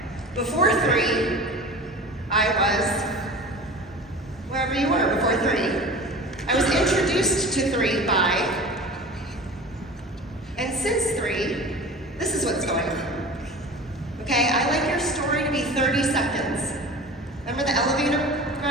Before 3, I was wherever you were before 3. I was introduced to 3 by, and since 3, this is what's going on. Okay, I like your story to be 30 seconds. Remember the elevator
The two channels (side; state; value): both; normal; correlation 0.36